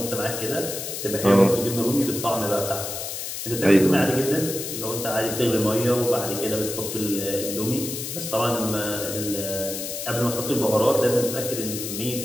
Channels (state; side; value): noise; left; hiss, 6 dB below the sound